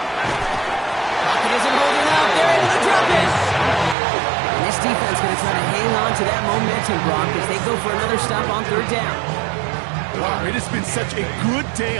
isn't holding up. They're able to drop it. And this defense going to try to hang on to that momentum, Brock, as they go for another stop on third down. Wow, it has been such a good day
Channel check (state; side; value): drops out; left; at 4.0 s